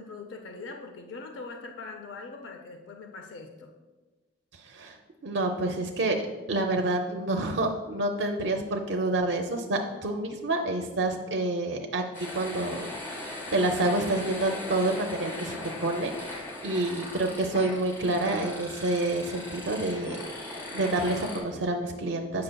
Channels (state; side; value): normal; both; correlation 0.13